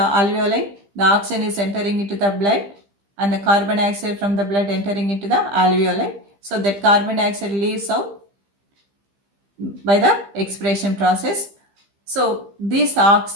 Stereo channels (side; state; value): left; late; 15 ms